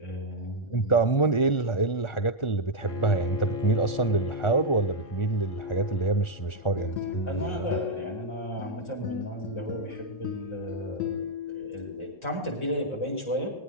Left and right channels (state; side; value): late; right; 1.4 ms